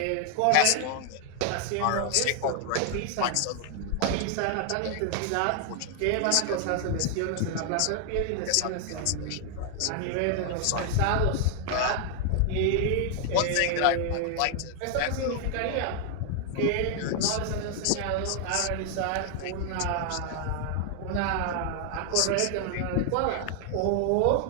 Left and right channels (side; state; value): both; different; correlation 0.00